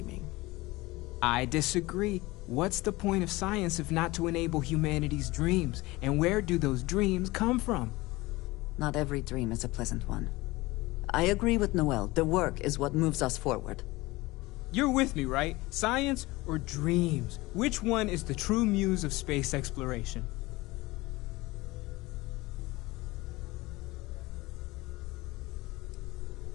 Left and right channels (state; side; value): quieter; right; 20.8 dB